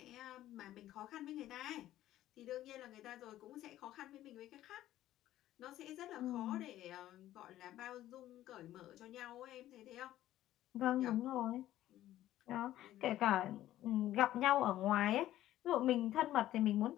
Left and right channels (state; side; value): quieter; right; 13.7 dB